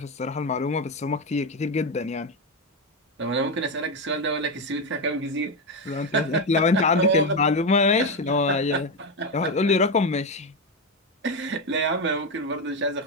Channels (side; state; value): both; normal; correlation 0.11